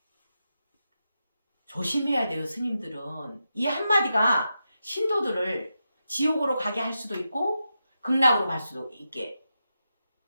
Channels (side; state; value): both; inverted; correlation -0.87